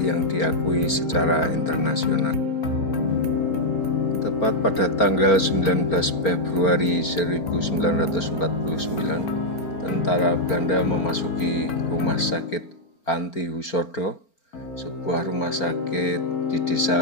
yang diakui secara internasional. Tepat pada tanggal 19 Februari 1949, tentara Belanda memasuki rumah sakit Panti Husodo, sebuah rumah sakit di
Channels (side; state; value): right; late; 4.4 ms